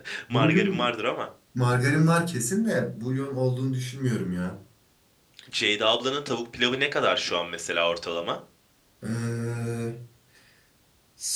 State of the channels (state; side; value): identical; both; correlation 1.00